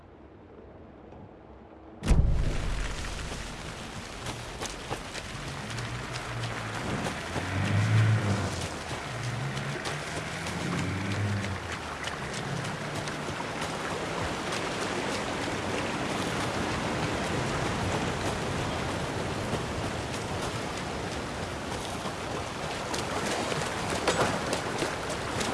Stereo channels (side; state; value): both; identical; correlation 1.00